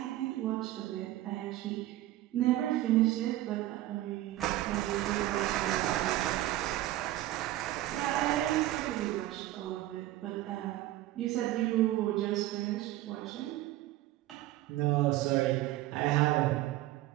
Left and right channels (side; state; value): left; quieter; 15.7 dB